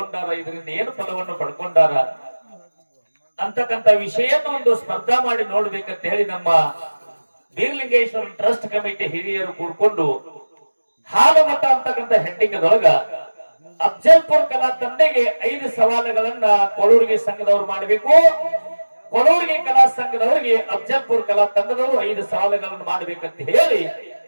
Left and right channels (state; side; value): inverted; both; correlation -1.00